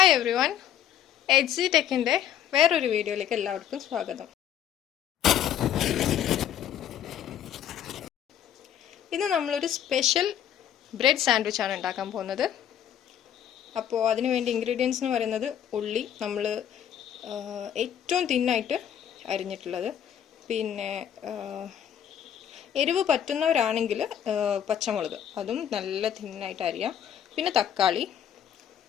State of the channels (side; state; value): right; quieter; 9.9 dB